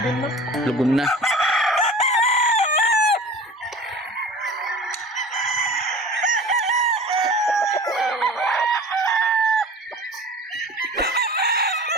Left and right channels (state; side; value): normal; both; correlation 0.39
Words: na. Lugon na.